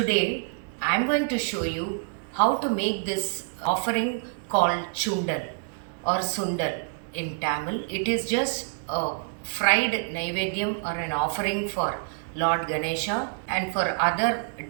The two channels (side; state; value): left; silent; 59 dB below the other